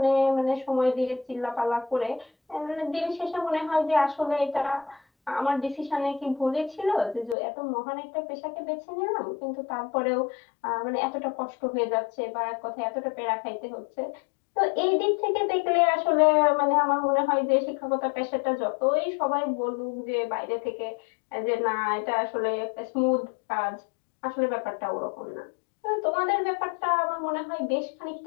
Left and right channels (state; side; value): drops out; right; at 7.4 s